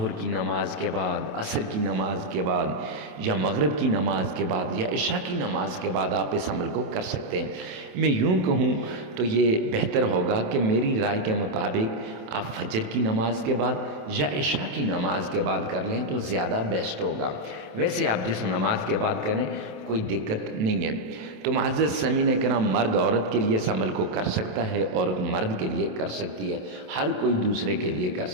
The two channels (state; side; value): late; left; 27 ms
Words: کی نماز کے بعد، عصر کی نماز کے بعد، یا مغرب کی نماز کے بعد، یا عشاء کی نماز کے بعد آپ اس عمل کو کر سکتے ہیں۔ میں یوں کہوں تو یہ بہتر ہوگا کہ میری رائے کے مطابق آپ فجر کی نماز کے بعد یا عشاء کی نماز کے بعد کر لیں تو زیادہ بیسٹ ہوگا۔ ویسے آپ جس نماز کے بعد کریں کوئی دقت نہیں ہے۔ تو معزز سامعین کرام، مرد عورت کے لیے اس عمل کو کر سکتا ہے، عورت مرد کے لیے کر سکتی ہے، ہر کوئی دوسرے کے لیے کر